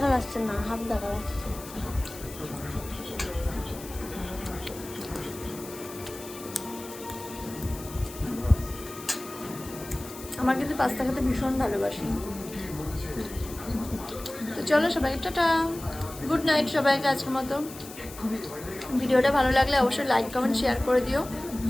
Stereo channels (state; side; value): noise; left; hiss, 15 dB below the sound